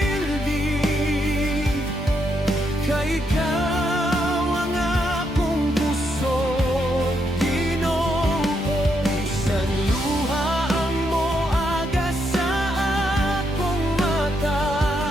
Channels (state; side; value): normal; both; correlation 0.78